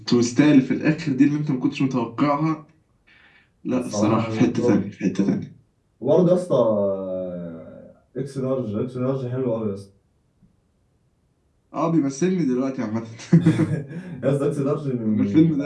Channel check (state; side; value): identical; both; correlation 1.00